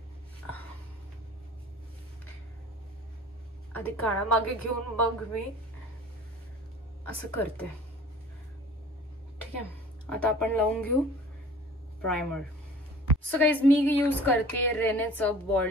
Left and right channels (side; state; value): both; normal; correlation 0.46